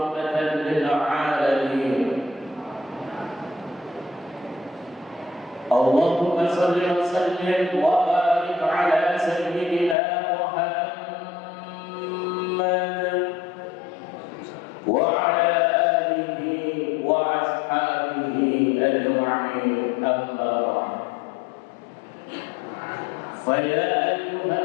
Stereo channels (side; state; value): right; drops out; at 10.0 s